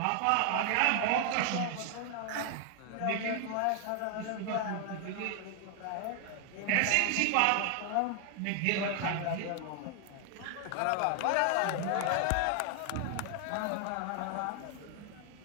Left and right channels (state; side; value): different; both; correlation 0.00